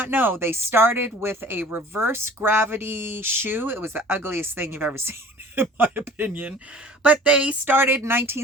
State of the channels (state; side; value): normal; both; correlation 0.46